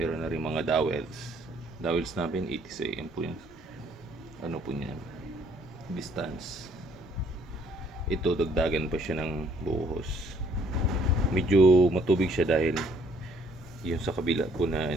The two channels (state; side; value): normal; both; correlation 0.63